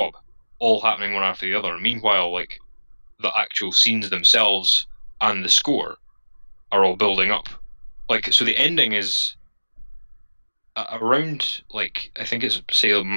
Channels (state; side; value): inverted; both; correlation -1.00